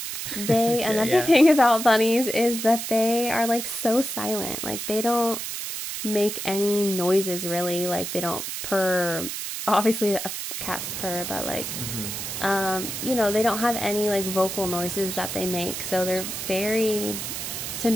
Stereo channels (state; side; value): noise; right; hiss, 5 dB below the sound